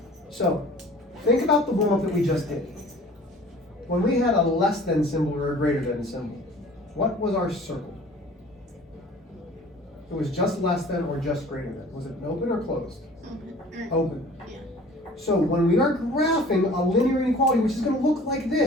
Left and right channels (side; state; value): both; normal; correlation 0.47